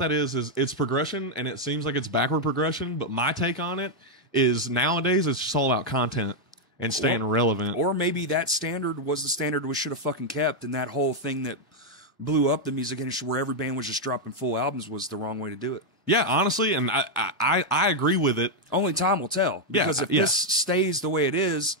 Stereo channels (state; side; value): normal; both; correlation 0.00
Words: is it's progression, and it seems like it's backward progression. But my take on it is nowadays it's just all about content and staying relevant. Or maybe that standard was the standard we should have fucking kept, and that whole thing that blew up the music industry where every band was just dropping full albums was the wrong way to do it. Yeah, honestly, and I agree with it. Only time will tell. Yeah, Because if yeah. this stays the way it is,